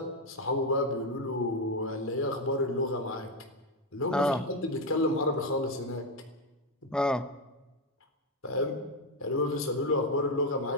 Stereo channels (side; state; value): both; normal; correlation 0.08